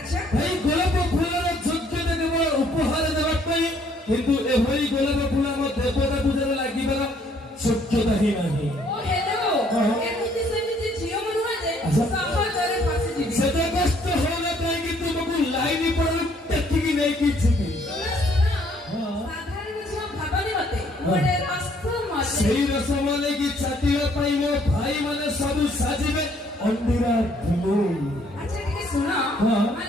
ଭାଇ ଗୋଲାପ ଫୁଲର ଯୋଗ୍ୟତା କେବଳ ଉପହାର ଦେବା ପାଇଁ, କିନ୍ତୁ ଏଭଳି ଗୋଲାପ ଫୁଲ ଆମ ଦେବତା ପୂଜାରେ ଲାଗିବାର ଯୋଗ୍ୟତା ହିଁ ନାହିଁ। ଓ ହେଲୋ ଏମିତି ସେମିତି ଝିଅ ନୁହଁ ଯେ ସହଜରେ ଫସିଯିବି। ସେତେ କଷ୍ଟ ହଉନା କାହିଁକି ତୁମକୁ ଲାଇନ ପଡରୁ ଟେକିକି ନେଇକି ଯିବି। ସାଧାରଣ ଝିଅ ଭାବନି ମତେ ଗୋଟେ ରସମଲେଇ। ସେଇ ରସମଲେଇକି ଚାଟିବା ପାଇଁ ମୋ ଭାଇ ମାନେ ସବୁ ସାଜିବେ ଅଣ୍ଡିରା ବିଲେଇ। ଆଚ୍ଛା ଟିକେ ଶୁଣ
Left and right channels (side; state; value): both; normal; correlation 0.65